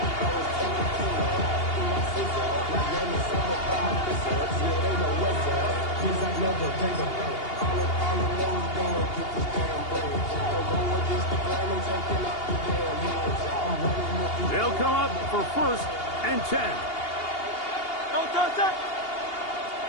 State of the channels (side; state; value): right; late; 2.8 ms